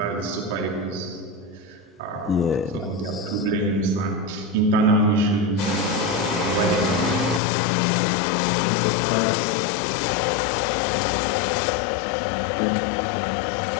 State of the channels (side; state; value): right; drops out; at 7.4 s